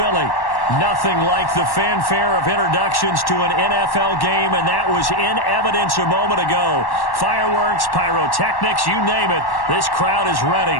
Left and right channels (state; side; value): late; right; 1.1 ms